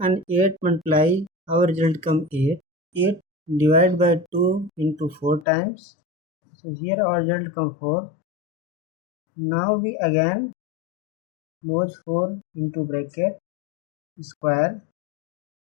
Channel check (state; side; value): drops out; right; at 5.5 s